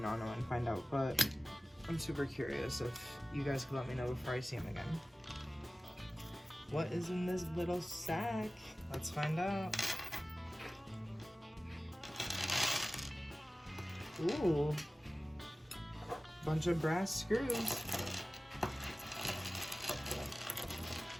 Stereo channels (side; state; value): both; normal; correlation 0.97